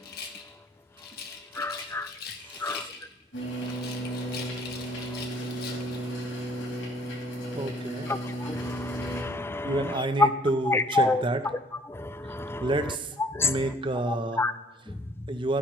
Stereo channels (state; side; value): normal; both; correlation 0.58